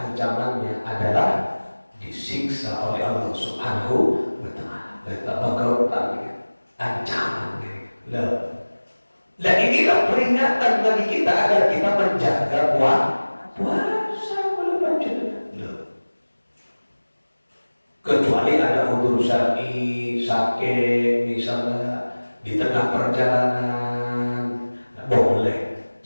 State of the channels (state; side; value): inverted; both; correlation -1.00